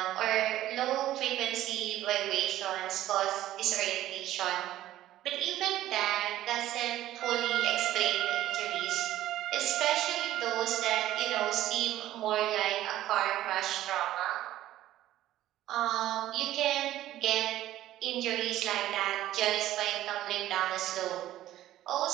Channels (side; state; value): left; quieter; 13.8 dB